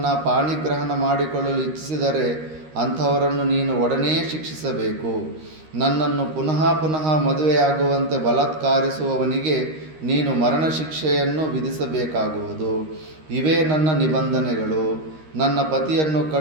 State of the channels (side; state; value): left; late; 13 ms